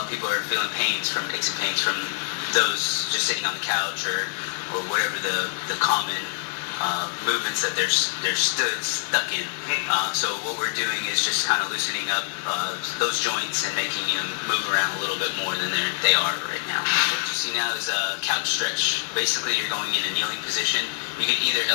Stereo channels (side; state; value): right; silent; digital silence